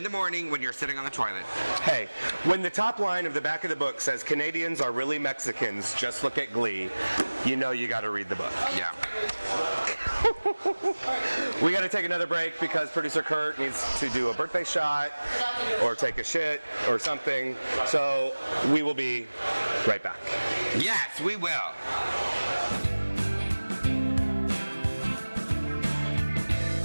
the morning when you're sitting on the toilet. Hey, when the top line of the back of the book says Canadians are really Mexicans, just look at Glee, you know you got to read the book. Yeah. We got to take another break because producer Kurt needs to do a birthday shot or take a shit or something. So we will be right back. Yes, we will.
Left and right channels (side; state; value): both; inverted; correlation -1.00